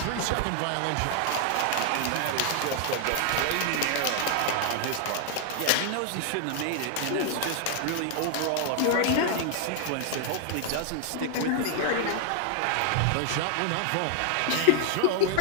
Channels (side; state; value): both; different; correlation 0.00